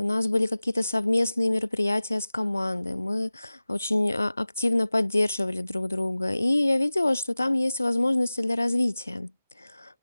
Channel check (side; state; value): both; inverted; correlation -0.98